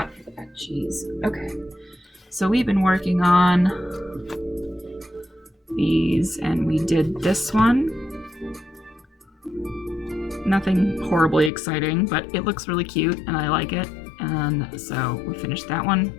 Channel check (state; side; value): drops out; right; at 11.5 s